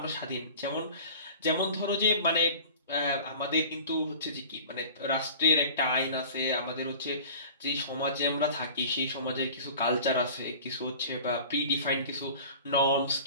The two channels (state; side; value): inverted; both; correlation -0.41